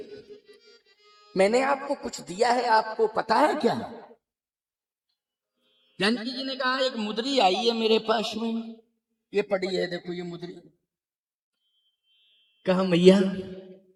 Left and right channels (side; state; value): both; identical; correlation 1.00